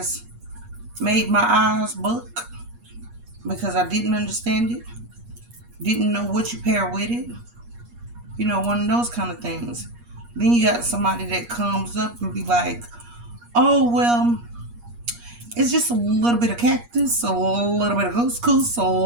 made my eyes buck because I didn't understand it, didn't know what you pair with it, you know, one of those kind of things. Then you got somebody that comes up and be like, oh, well, it's just a little bit of cactus, a little bit of couscous, a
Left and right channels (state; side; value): late; left; 8.4 ms